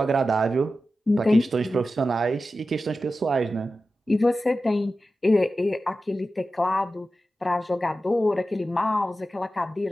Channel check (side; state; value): both; normal; correlation 0.93